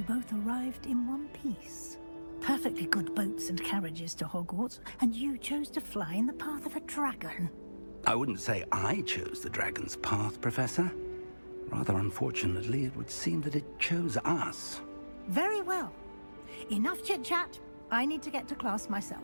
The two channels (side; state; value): both; inverted; correlation -1.00